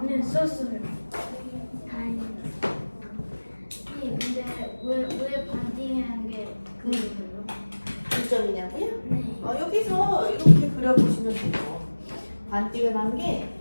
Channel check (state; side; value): inverted; both; correlation -1.00